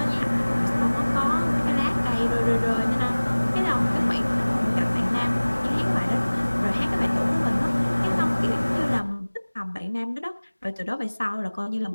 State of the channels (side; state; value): both; inverted; correlation -1.00